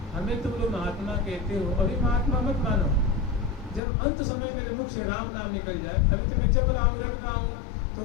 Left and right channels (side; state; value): right; drops out; at 3.8 s